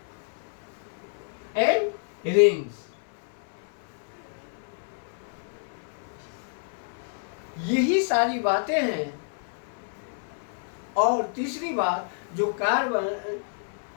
and rings. यही सारी बातें हैं। और तीसरी बात, जो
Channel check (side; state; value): right; silent; 59 dB below the other